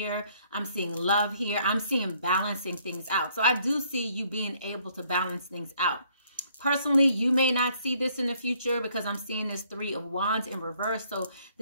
I'm seeing love here. I'm seeing balancing things out. So I do see you being able to balance things out. Personally, you may not see this in the future because I'm seeing this 3 of Wands in reverse. So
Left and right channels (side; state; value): both; inverted; correlation -0.65